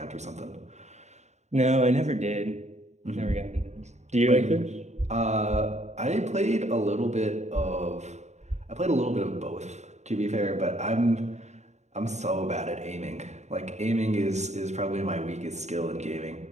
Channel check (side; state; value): left; late; 0.33 ms